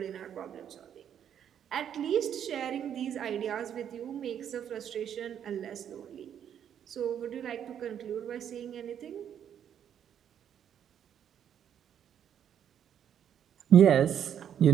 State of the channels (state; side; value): quieter; left; 9.2 dB